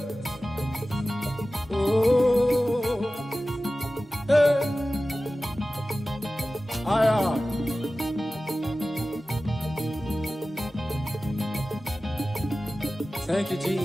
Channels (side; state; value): both; normal; correlation 0.96